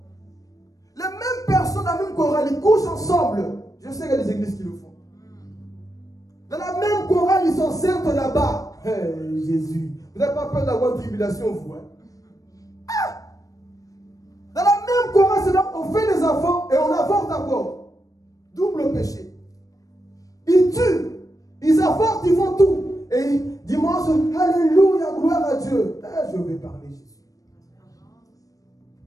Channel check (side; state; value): right; late; 0.17 ms